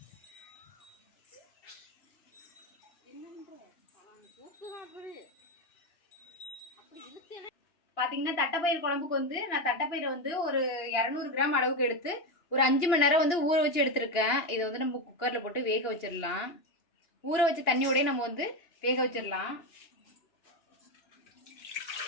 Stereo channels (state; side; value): late; right; 2.9 ms